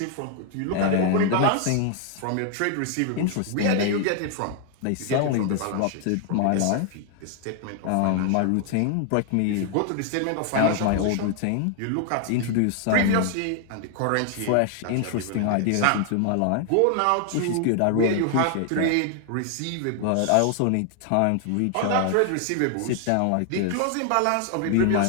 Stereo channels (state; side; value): different; both; correlation 0.00